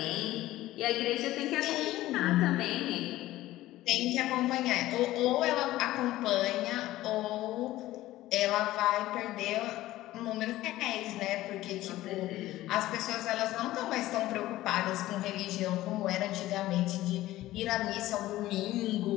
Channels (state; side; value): quieter; right; 15.9 dB